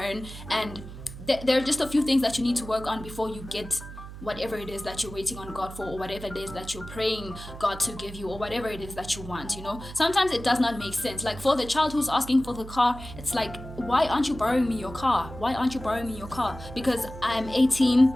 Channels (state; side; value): noise; right; hum, 13 dB below the sound